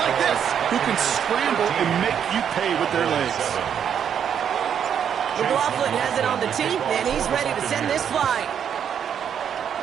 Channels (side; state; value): left; quieter; 8.4 dB